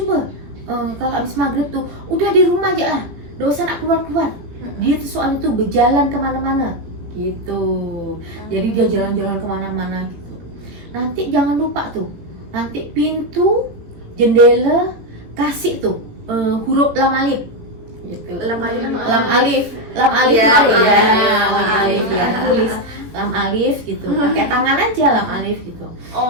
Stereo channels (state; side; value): late; left; 18 ms